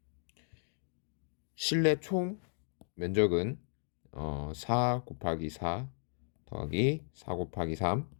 실내 총 면적은 4 곱하기 4 더하기 4 곱하기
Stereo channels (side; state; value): right; silent; digital silence